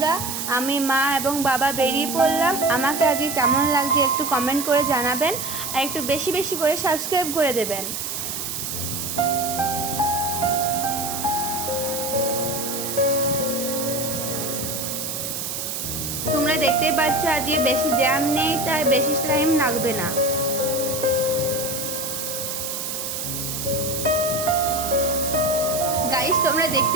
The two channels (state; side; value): noise; right; hiss, 4 dB below the sound